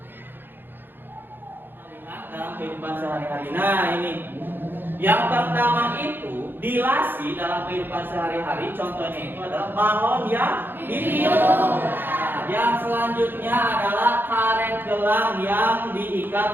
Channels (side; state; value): left; late; 0.098 ms